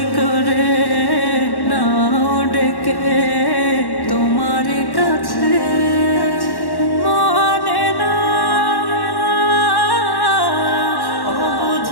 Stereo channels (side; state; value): right; late; 1.1 ms